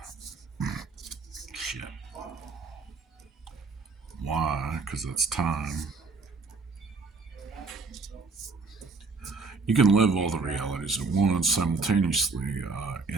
because it's time. You can live all the realities at once simultaneously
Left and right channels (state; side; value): quieter; left; 4.1 dB